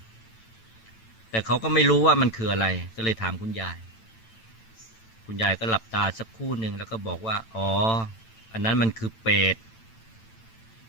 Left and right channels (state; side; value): late; right; 9.0 ms